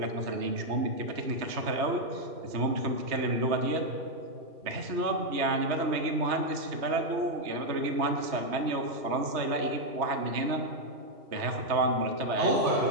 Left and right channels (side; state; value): left; late; 3.2 ms